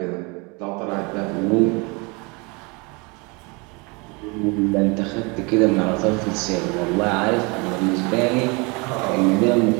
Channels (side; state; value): left; quieter; 28.8 dB